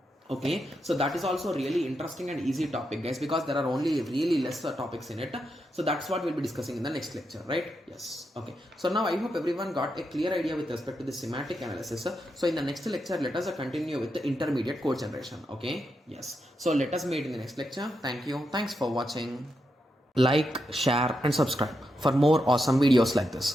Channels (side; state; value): both; normal; correlation 0.84